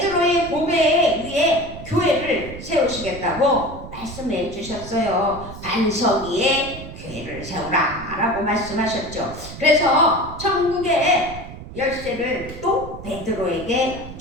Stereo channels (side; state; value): right; noise; rumble, 13 dB below the sound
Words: 고백에 의해 교회를 세우시겠다고 말씀해 주셨어요. 반석 위에 교회를 세우라 라고 말씀하셨죠. 그래서 천국의 열쇠를 또 베드로에게